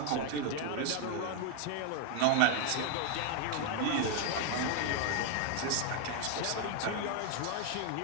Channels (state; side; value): different; both; correlation 0.00